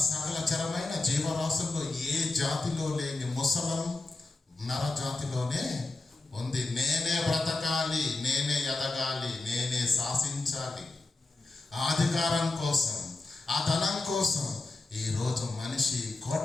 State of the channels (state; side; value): quieter; right; 3.3 dB